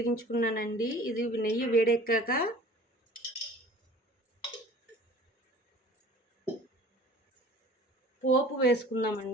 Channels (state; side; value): normal; both; correlation 0.46